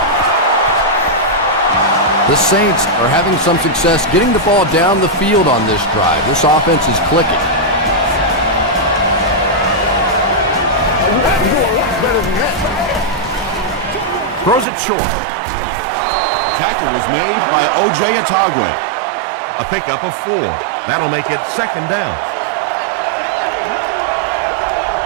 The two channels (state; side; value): drops out; left; at 14.7 s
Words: The Saints are having some success getting the ball down the field on this drive. This offense is clicking. Throws it short. Tackle was made by O.J. Atagwe. A pickup of 4. That'll make it 2nd down.